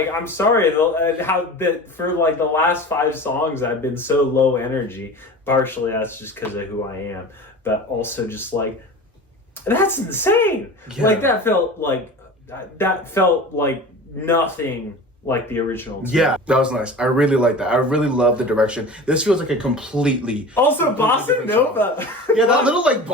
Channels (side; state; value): both; normal; correlation 0.35